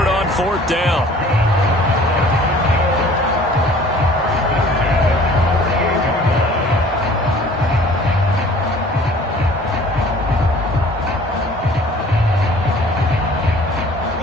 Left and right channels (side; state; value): both; normal; correlation 0.50